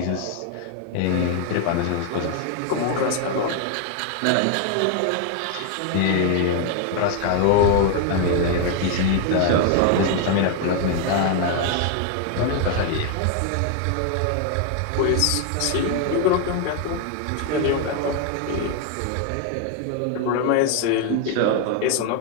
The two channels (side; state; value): both; different; correlation 0.00